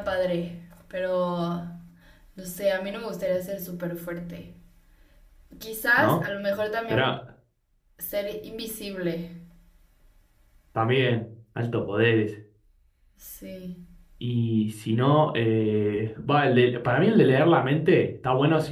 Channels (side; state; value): both; identical; correlation 1.00